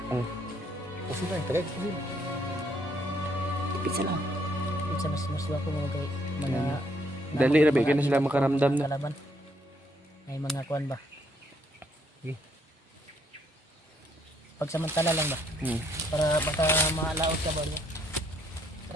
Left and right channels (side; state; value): both; normal; correlation 0.69